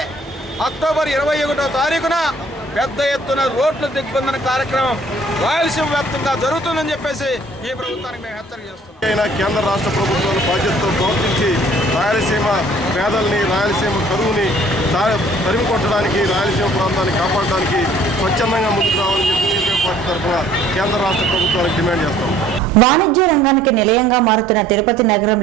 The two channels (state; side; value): normal; both; correlation 0.56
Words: అక్టోబర్ 21వ తారీఖున పెద్ద ఎత్తున రోడ్ల దిగ్బంధన కార్యక్రమం రాయలసీమ వ్యాప్తంగా జరుగుతుందని చెప్పేసి ఈ ప్రభుత్వానికి మేము హెచ్చరిక చేస్తున్నాం. కేంద్ర రాష్ట్ర ప్రభుత్వాలు బాధ్యతతో ప్రవర్తించి రాయలసీమ పేదల్ని, రాయలసీమ కరువుని తరిమి కొట్టడానికి, రాయలసీమ ప్రాంతాన్ని కాపాడడానికి స్వచ్ఛందంగా ముందుకు రావాలని చెప్పి సిపిఎం పార్టీ తరఫున కేంద్ర రాష్ట్ర ప్రభుత్వాలకు డిమాండ్ చేస్తాం. వాణిజ్య రంగానికి నిలయంగా మారుతున్న తిరుపతి